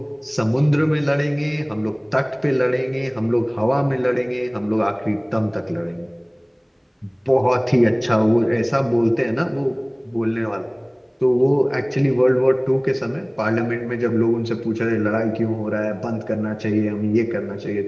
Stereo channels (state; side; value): identical; both; correlation 1.00